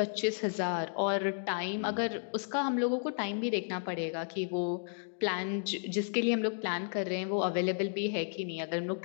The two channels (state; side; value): silent; right; digital silence